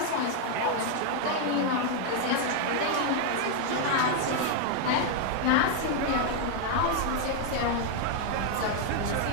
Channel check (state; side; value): different; both; correlation 0.00